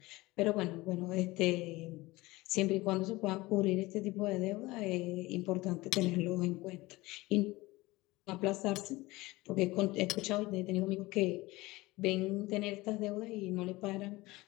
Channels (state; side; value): quieter; right; 20.5 dB